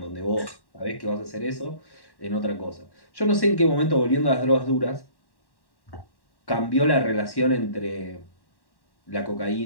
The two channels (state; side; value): late; right; 1.1 ms